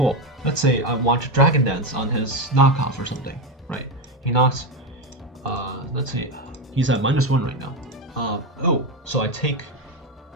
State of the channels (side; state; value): both; normal; correlation 0.13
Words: Let's say I want to Dragon Dance on his knockoff or something, right? He knocks, let's see, he's at -1 right now. So I take,